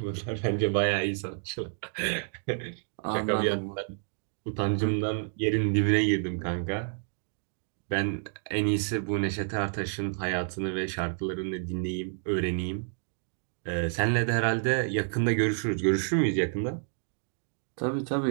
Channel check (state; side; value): silent; left; digital silence